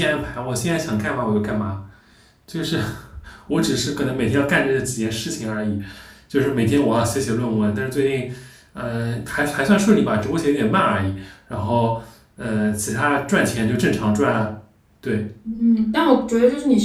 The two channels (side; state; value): both; identical; correlation 1.00